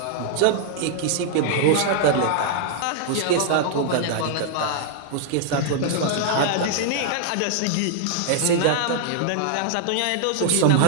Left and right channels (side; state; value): both; different; correlation -0.01